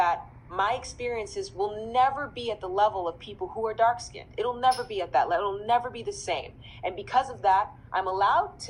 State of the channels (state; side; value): identical; both; correlation 1.00